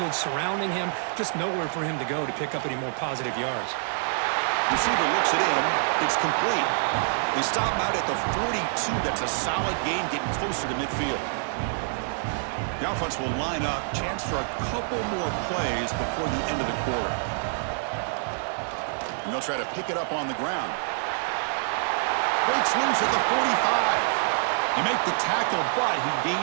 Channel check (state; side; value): silent; left; 60 dB below the other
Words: surrounding him. Just nowhere for him to go to pick up any more positive yards. Receiver looks it in. It's complete. They stop him out at the 42. That's a solid gain, getting closer to midfield. The offense will line up. Chance for a couple more plays before the end of the quarter. And they'll try to pick it up on the ground. Breaks loose at the 45. You make the tackle, but he